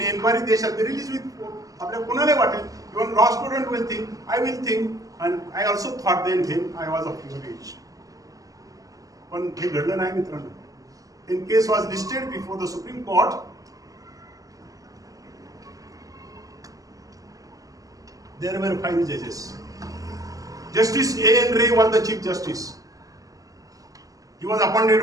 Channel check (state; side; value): late; left; 0.17 ms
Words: enquiry, they shall be release with. आपल्या कोणाला वाटेल, even law student will think, I will think, and I also thought then him I was of your age. पण हे घडलं नाही मित्रांनो. In case was listed before the Supreme Court. There were 5 judges. Justice A.N. Ray was the Chief Justice. He was